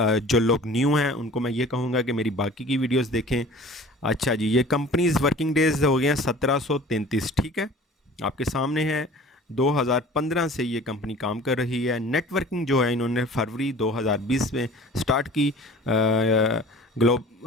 जो लोग न्यू हैं उनको मैं ये कहूँगा कि मेरी बाकी की वीडियोस देखें। अच्छा जी, ये कंपनीज वर्किंग डेज हो गए हैं 1733। ठीक है, आपके सामने है। 2015 से ये कंपनी काम कर रही है। नेटवर्किंग जो है इन्होंने फरवरी 2020 में स्टार्ट की।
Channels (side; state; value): both; normal; correlation 0.45